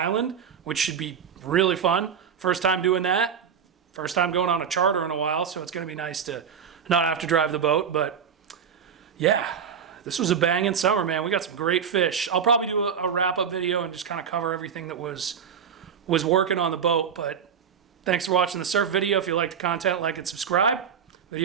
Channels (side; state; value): left; quieter; 7.3 dB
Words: which should be really fun. First time doing that. First time going on a charter in a while, so it's going to be nice to not have to drive the boat. But yeah, this was a banging summer, man. We got some great fish. I'll probably do a wrap-up video and just kind of cover everything that was working on the boat. But thanks for watching the surf video. If you like the content, like and subscribe.